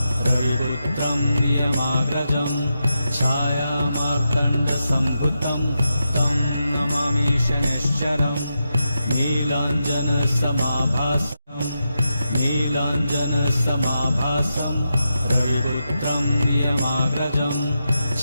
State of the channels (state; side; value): inverted; both; correlation -0.87